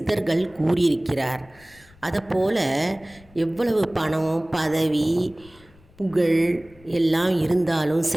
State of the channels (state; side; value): noise; left; rumble, 26 dB below the sound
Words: கூறியிருக்கிறார். அதைப்போல் எவ்வளவு பணம், பதவி, புகழ் எல்லாம் இருந்தாலும்